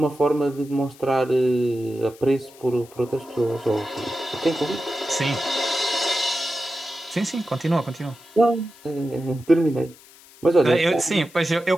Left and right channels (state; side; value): noise; left; hiss, 23 dB below the sound